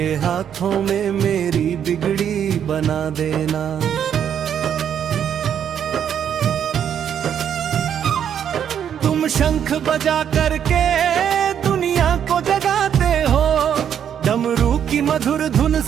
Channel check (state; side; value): quieter; left; 8.9 dB